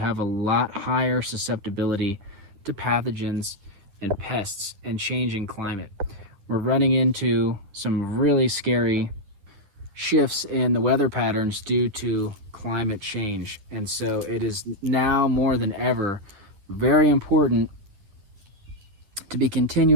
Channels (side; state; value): left; late; 9.9 ms